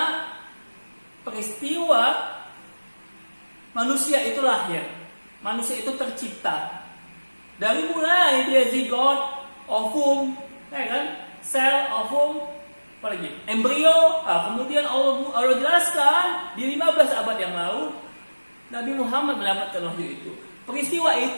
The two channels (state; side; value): inverted; both; correlation -1.00